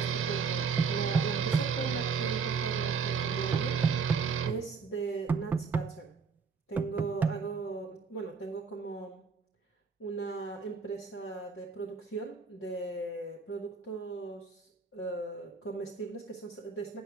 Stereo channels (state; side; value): quieter; left; 5.4 dB